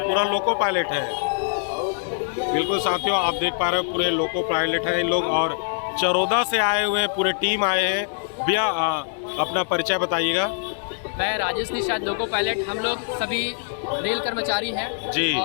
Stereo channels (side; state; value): right; silent; digital silence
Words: लोको पायलट है। बिल्कुल साथियों, आप देख पा रहे हो पूरे लोको पायलट हैं इन लोग और चरोदा से आए हुए हैं, पूरे टीम आए हैं। भैया अपना परिचय बताइएगा। मैं राजेश निषाद लोको पायलट। हम लोग सभी रेल कर्मचारी हैं जी।